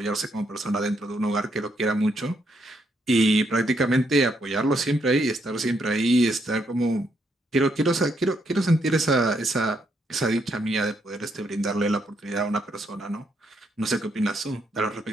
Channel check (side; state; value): both; normal; correlation 0.76